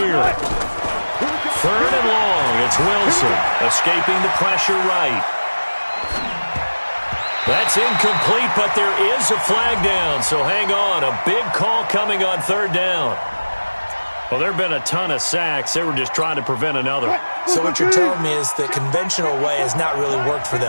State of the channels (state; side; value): inverted; both; correlation -1.00